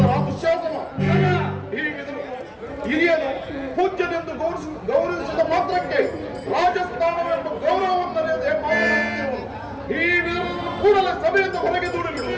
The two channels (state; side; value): identical; both; correlation 1.00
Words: ದುಶ್ಯಾಸನ, ಹಿರಿಯನು ಪೂಜ್ಯನೆಂದು ಗೌರವಿಸಿದ ಮಾತ್ರಕ್ಕೆ ರಾಜಸ್ಥಾನವೆಂಬ ಗೌರವವನ್ನರಿಯದೆ ಮಾತನಾಡುತ್ತಿರುವನು. ಈ ವಿಧವನ್ನು ಕೂಡಲೇ ಸಭೆಯಿಂದ ಹೊರಗೆ ದೂಡಿಬಿಡು.